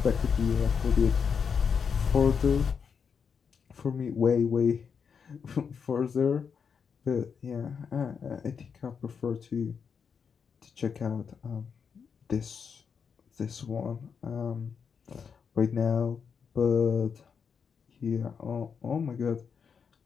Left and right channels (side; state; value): right; quieter; 6.4 dB